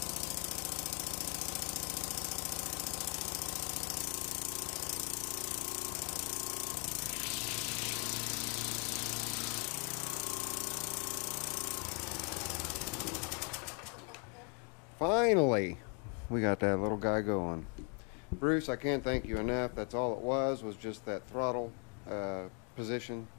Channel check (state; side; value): quieter; right; 35.0 dB